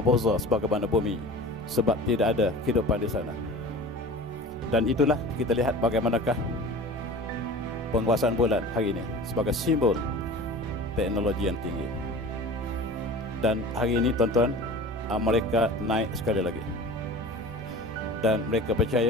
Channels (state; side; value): normal; both; correlation 0.38